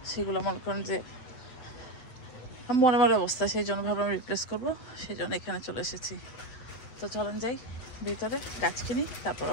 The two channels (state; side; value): late; right; 8.1 ms